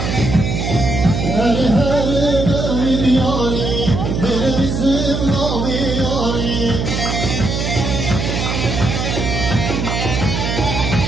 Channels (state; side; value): noise; right; hum, 2 dB below the sound